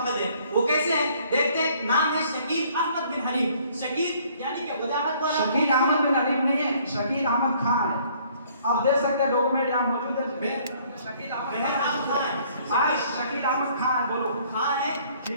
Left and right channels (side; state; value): both; inverted; correlation -0.60